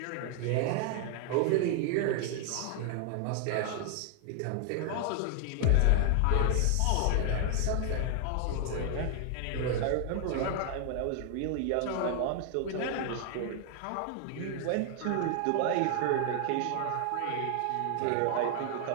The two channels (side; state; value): both; different; correlation 0.00